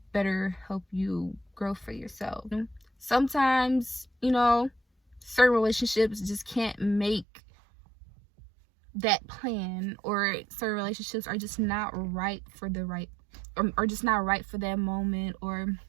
better help you grow for yourself. Sometimes, certain relationships just can't make that plan, or certain relationships are just not right for or just not right for that moment, or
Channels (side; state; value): left; drops out; at 7.2 s